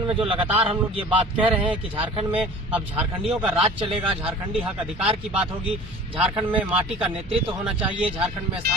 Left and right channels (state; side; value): normal; both; correlation 0.43